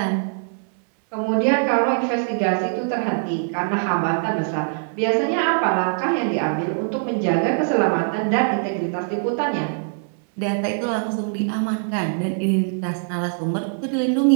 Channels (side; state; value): left; silent; 61 dB below the other